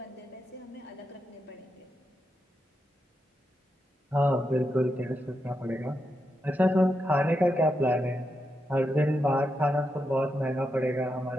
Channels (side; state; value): both; normal; correlation 0.85